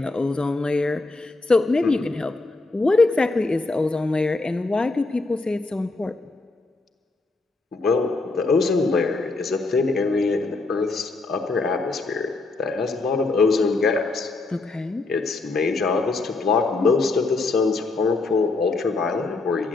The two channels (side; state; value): right; quieter; 3.5 dB